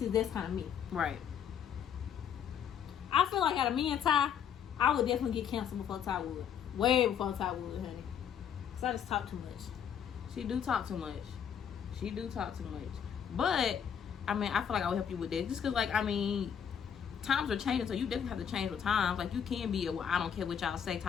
that's kind of me. Right. I feel like out of me and Ty, I would definitely get canceled before Ty would. Way before Ty would, honey. Cause I just talk too much. She do talk too much. But I mean, I feel like I would help you with this, just because, like, I mean, times are changing, so you definitely have to change with times. Like, you can be well, I don't care what y'all say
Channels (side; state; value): right; quieter; 8.3 dB